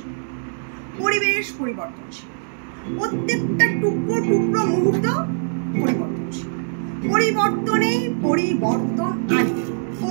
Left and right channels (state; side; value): silent; left; digital silence